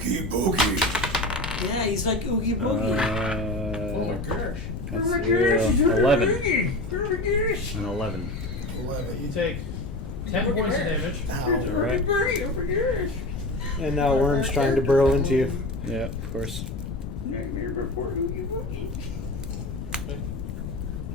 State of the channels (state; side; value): noise; left; rumble, 7 dB below the sound